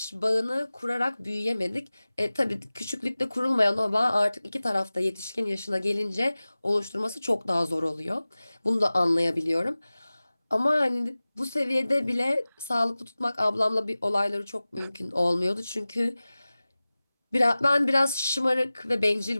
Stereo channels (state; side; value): inverted; both; correlation -0.98